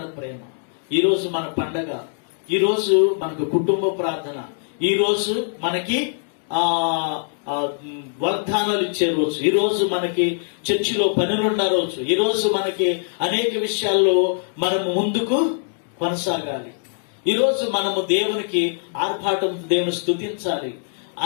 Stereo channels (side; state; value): right; silent; digital silence